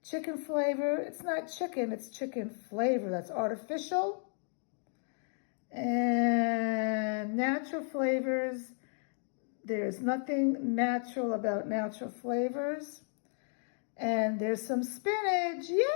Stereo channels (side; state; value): right; silent; 55 dB below the other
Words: Chicken flavor, it's not chicken, it's chicken flavor. That's artificial. And natural flavors, there's nothing natural about natural flavors. And there's some spinach,